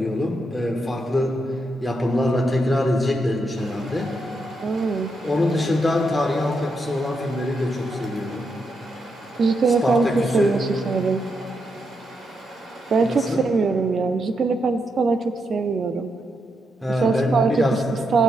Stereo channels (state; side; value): normal; both; correlation 0.82